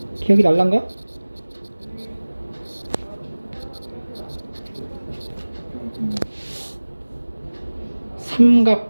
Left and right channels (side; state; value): both; inverted; correlation -1.00